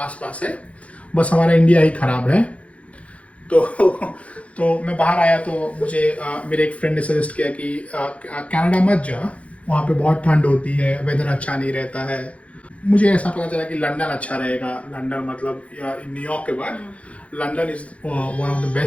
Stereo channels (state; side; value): late; right; 0.064 ms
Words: है, बस हमारा इंडिया ही ख़राब है। तो मैं बाहर आया तो मुझे मेरे एक फ्रेंड ने सजेस्ट किया कि कनाडा मत जा, वहाँ पे बहुत ठंड होती है, वेदर अच्छा नहीं रहता है। मुझे ऐसा पता चला कि लंदन अच्छा रहेगा। लंदन मतलब न्यूयॉर्क के बाद London is one of the